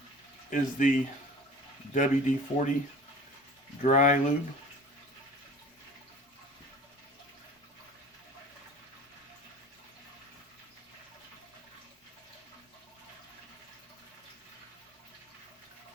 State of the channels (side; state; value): both; normal; correlation 0.43